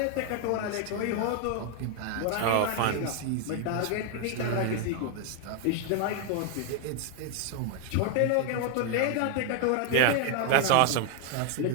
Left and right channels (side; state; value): both; different; correlation 0.00